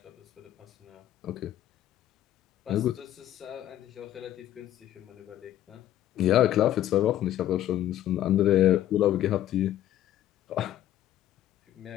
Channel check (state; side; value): quieter; right; 12.4 dB